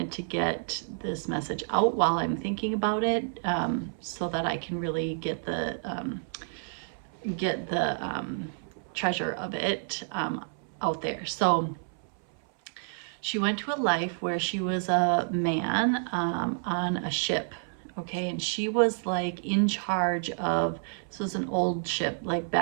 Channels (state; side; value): silent; left; 58 dB below the other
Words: to get this message out while I'm thinking about it, so that I can really get the treasure of it out there. So she went to a life where she was a man on a ship, okay, and she was like in charge of, this was an old ship, like